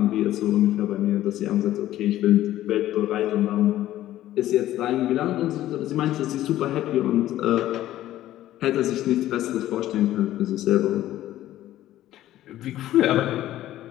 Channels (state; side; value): quieter; right; 13.9 dB